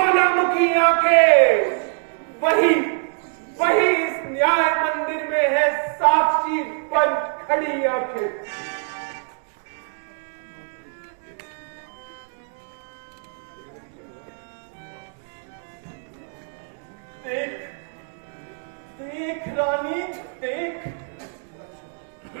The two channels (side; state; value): left; silent; 60 dB below the other